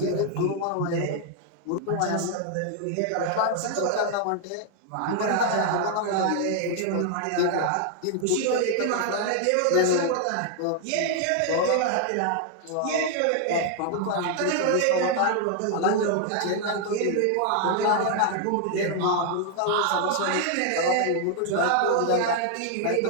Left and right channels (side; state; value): both; different; correlation 0.00